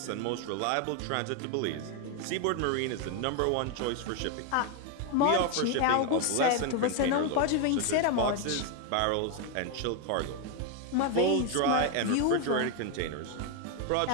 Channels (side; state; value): both; different; correlation 0.01